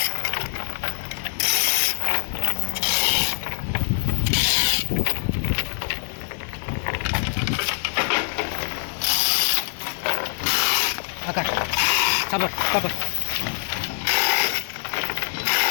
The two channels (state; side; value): silent; right; digital silence